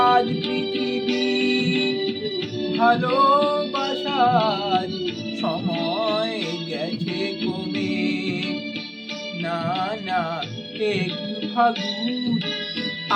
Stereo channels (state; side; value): identical; both; correlation 1.00